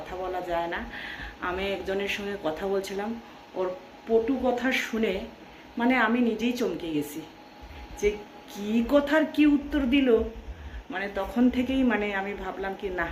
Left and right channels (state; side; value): identical; both; correlation 1.00